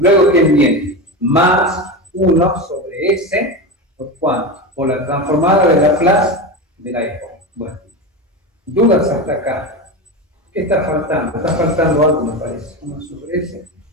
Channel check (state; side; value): normal; both; correlation 0.21